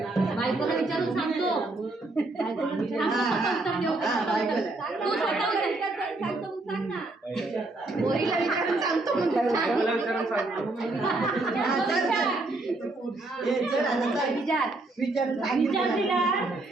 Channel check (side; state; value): left; quieter; 3.0 dB